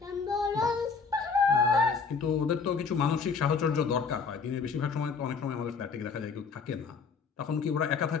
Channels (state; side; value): quieter; right; 5.3 dB